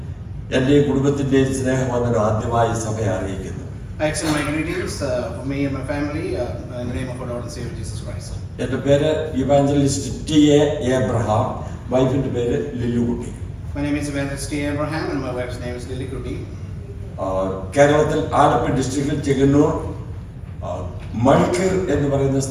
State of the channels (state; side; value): identical; both; correlation 1.00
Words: എന്റെ കുടുംബത്തിന്റെയും സ്നേഹം വന്നൊരു ആദ്യമായി സഭയെ അറിയിക്കുന്നു. I extend my greetings for me and my family in the name of our Lord and Savior Jesus Christ. എന്റെ പേര് ഇവാഞ്ചലിസ്റ്റ് ടി.എ. എബ്രഹാം, വൈഫിന്റെ പേര് ലില്ലുകുട്ടി. My name is Evangelist T. Abraham and my wife's name is Lily Kuti. കേരളത്തിൽ ആലപ്പുഴ ഡിസ്ട്രിക്റ്റിൽ ചെങ്ങന്നൂർ മൾക്കീർ എന്ന് പറയുന്ന